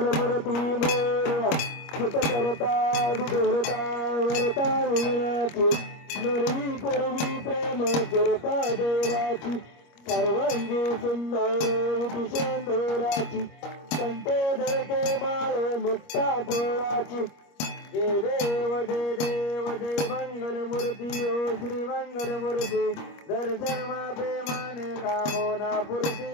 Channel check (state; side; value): late; right; 25 ms